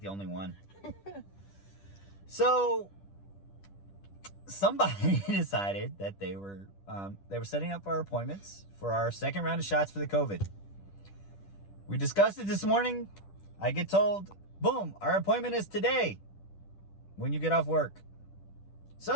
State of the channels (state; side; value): late; right; 10 ms